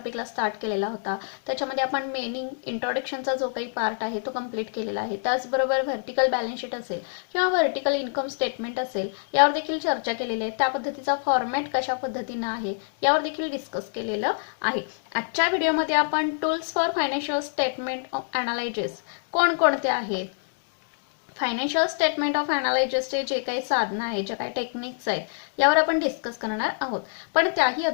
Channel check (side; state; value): right; silent; digital silence